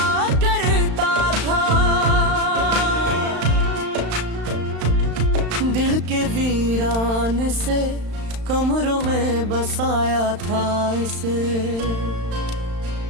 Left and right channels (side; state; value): left; late; 35 ms